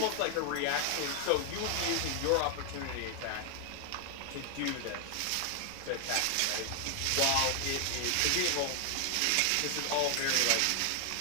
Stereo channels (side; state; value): both; different; correlation 0.00